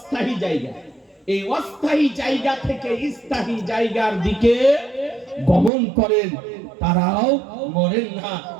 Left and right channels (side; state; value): left; drops out; at 5.7 s